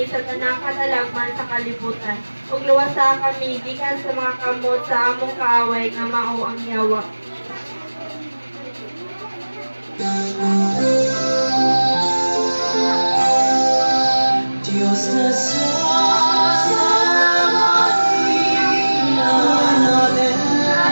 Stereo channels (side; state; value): both; inverted; correlation -1.00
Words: sa tanang katalagman sa kalibutan. Ug luwasa kami gikan sa mga kamot sa among kaaway nga mao ang yawa. Dios te salve María, llena eres